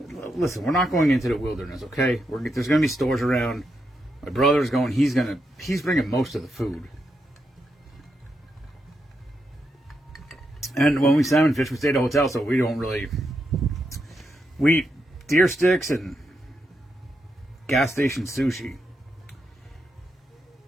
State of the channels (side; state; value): both; normal; correlation 0.83